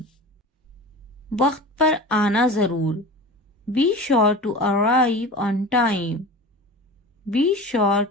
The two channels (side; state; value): both; normal; correlation 0.34